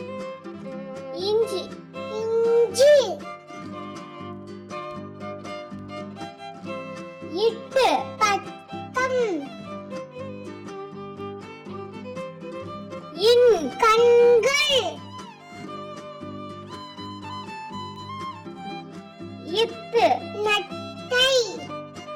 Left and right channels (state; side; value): identical; both; correlation 1.00